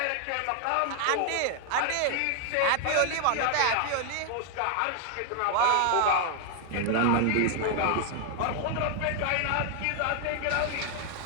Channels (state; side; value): different; both; correlation 0.00